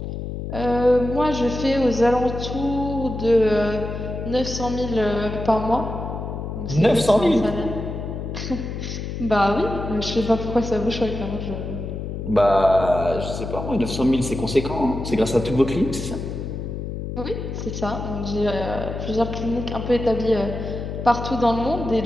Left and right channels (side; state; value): left; noise; hum, 6 dB below the sound